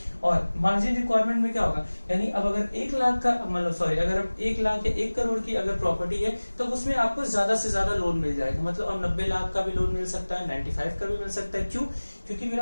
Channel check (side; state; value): both; inverted; correlation -1.00